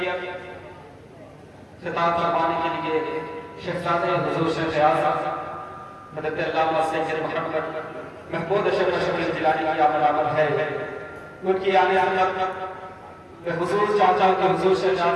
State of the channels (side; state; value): both; identical; correlation 1.00